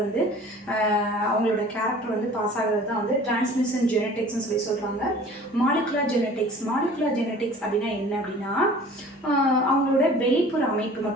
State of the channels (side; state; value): both; normal; correlation 0.46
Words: அவங்களோட கேரக்டர் பாஸ் ஆகிறது தான் டிரான்ஸ்மிஷன் ஜெனட்டிக்ஸ்னு சொல்கிறாங்க. மாலிகுலர் ஜெனட்டிக்ஸ் அப்படின்னா என்ன அப்படின்னா அவங்களோட வெளிப்புற அமைப்பு